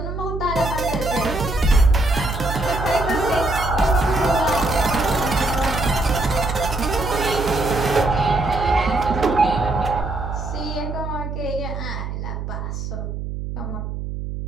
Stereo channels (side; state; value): right; noise; hum, 6 dB below the sound